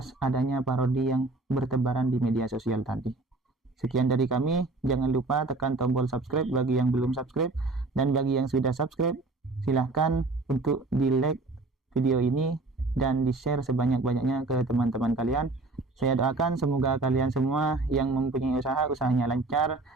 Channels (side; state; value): left; quieter; 3.3 dB